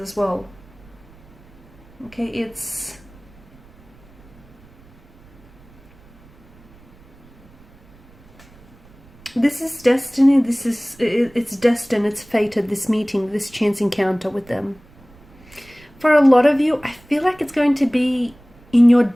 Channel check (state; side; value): noise; right; rumble, 26 dB below the sound